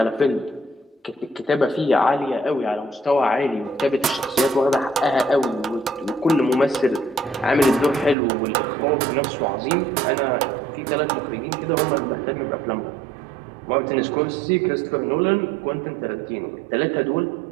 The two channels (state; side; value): drops out; left; at 8.2 s